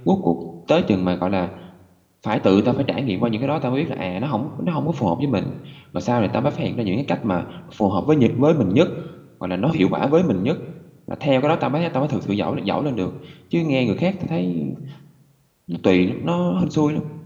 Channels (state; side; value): identical; both; correlation 1.00